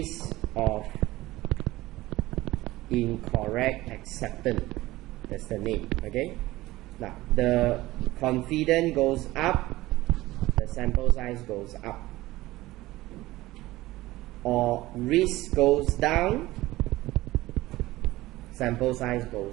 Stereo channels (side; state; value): left; quieter; 17.9 dB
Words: of incorrect acceptance. That's the name. Okay? Now, the confidence goes up, the sample size goes up. Or risk goes down, sample size